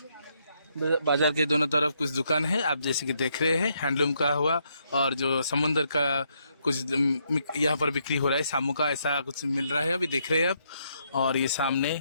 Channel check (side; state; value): both; inverted; correlation -0.75